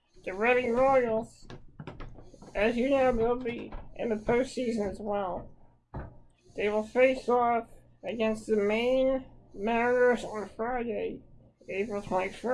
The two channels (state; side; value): identical; both; correlation 1.00